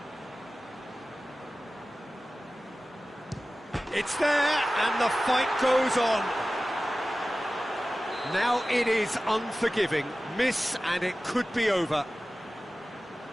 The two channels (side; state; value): both; normal; correlation 0.96